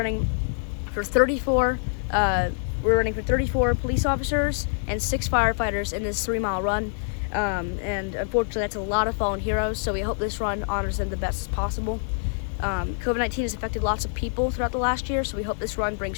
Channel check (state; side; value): silent; right; 61 dB below the other